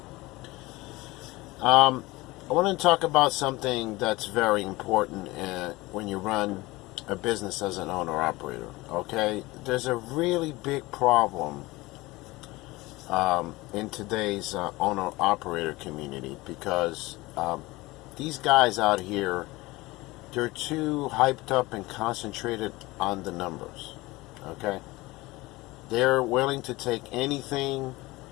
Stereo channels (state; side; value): quieter; right; 20.9 dB